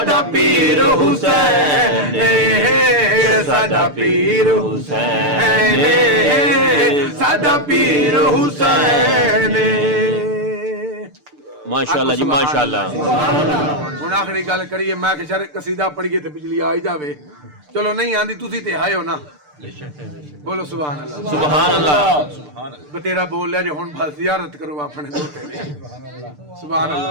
پیر حسین ساڈا پیر حسین ساڈا پیر حسین. ماشاءاللہ جی ماشاءاللہ. ہن آخری گل کریے میں کہ شر قصیدہ پڑھیے تے بجلی آ ہی جاوے. چلو نہیں آندی تسی تے آئے ہو نا بولو سبحان اللہ سبحان اللہ. بتیرا بول لیا جو ہن بس زیارت کرو اپنے دوتے نے سبحان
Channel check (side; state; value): left; late; 6.7 ms